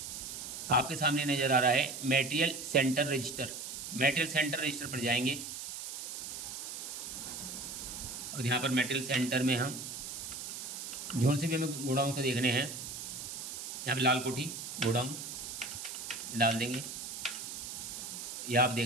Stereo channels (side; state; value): right; noise; hiss, 7 dB below the sound